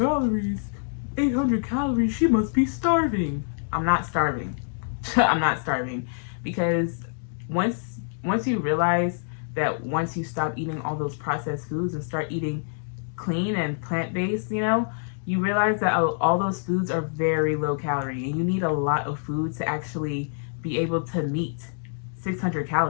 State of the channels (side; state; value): right; silent; digital silence